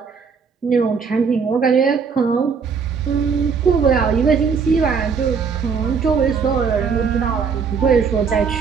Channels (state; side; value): quieter; left; 5.8 dB